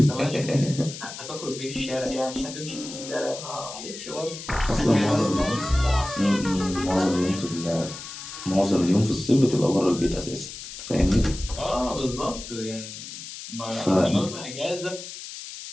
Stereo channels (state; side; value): noise; left; hiss, 11 dB below the sound